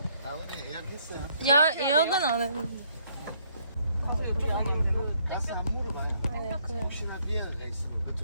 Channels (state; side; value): inverted; both; correlation -0.67